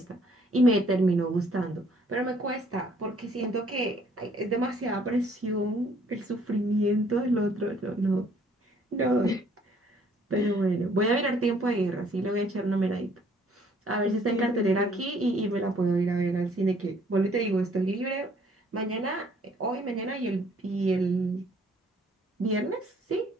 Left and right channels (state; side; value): normal; both; correlation 0.61